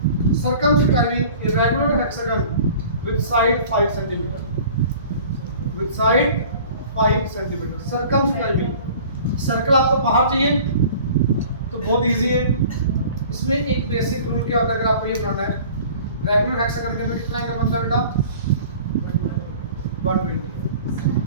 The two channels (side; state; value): both; inverted; correlation -0.46